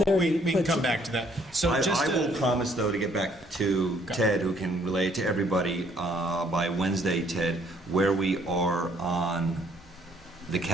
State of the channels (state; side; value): normal; both; correlation 0.64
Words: 5:30, We can but- come back to that. So I just will promise, though, to get back to Got it. Ted, who can relay it to everybody by Wednesday, Ted, where we are on the